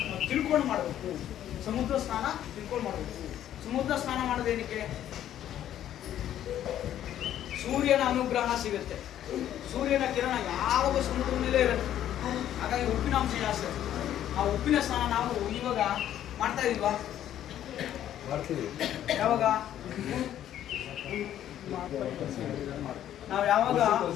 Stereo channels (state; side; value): quieter; right; 11.4 dB